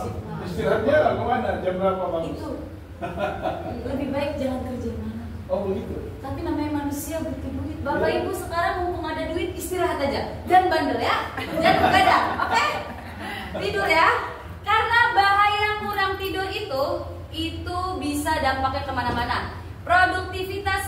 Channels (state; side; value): identical; both; correlation 1.00